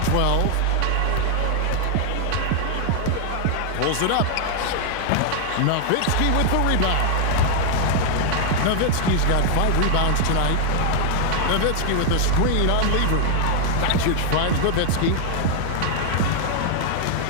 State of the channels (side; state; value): both; different; correlation 0.00